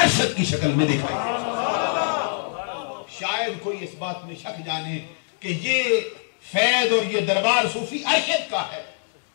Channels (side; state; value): right; silent; digital silence